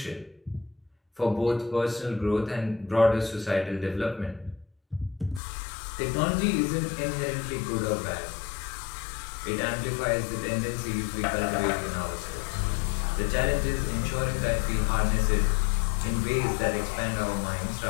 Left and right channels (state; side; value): drops out; right; at 5.4 s